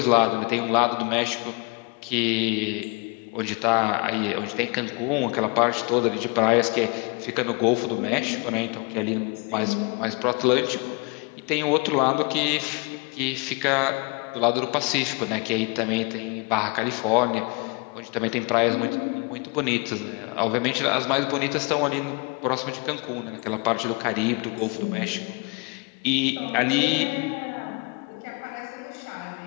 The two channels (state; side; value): quieter; right; 30.5 dB